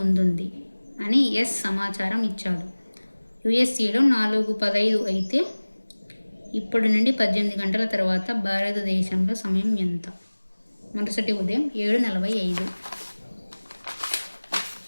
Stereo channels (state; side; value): inverted; both; correlation -1.00